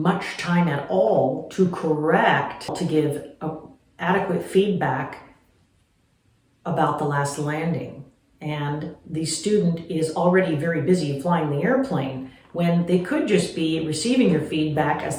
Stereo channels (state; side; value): identical; both; correlation 1.00